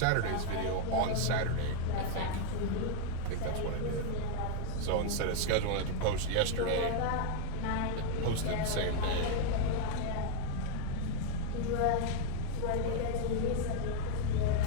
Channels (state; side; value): different; both; correlation 0.00